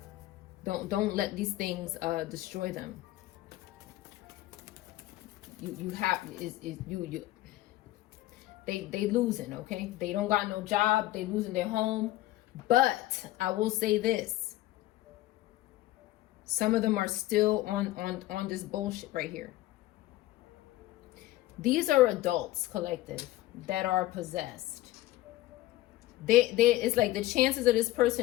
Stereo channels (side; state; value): right; quieter; 16.4 dB